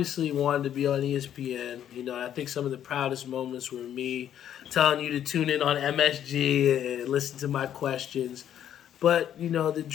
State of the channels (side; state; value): right; quieter; 10.3 dB